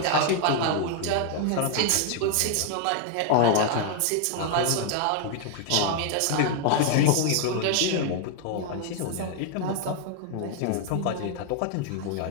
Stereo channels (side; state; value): both; different; correlation 0.00